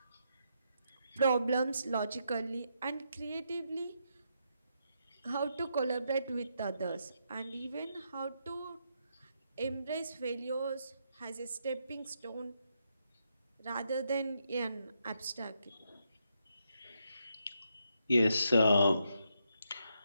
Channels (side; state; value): both; inverted; correlation -0.80